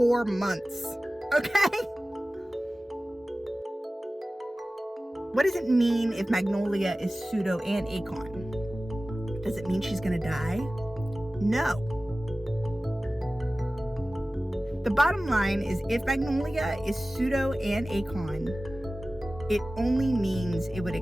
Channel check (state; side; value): normal; both; correlation 0.97